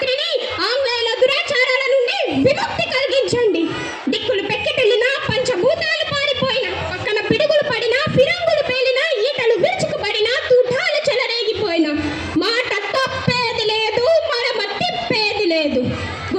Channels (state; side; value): identical; both; correlation 1.00